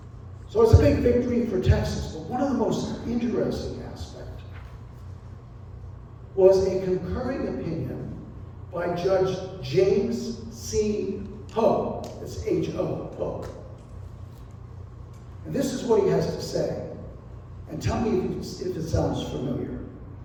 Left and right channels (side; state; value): both; identical; correlation 1.00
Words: So it's a big victory for Texas, but one of the most interesting aspects was a concurring opinion by Judge James C. Ho. It's H-O, Ho. And this is what he has to say. And tell me if it sounds familiar.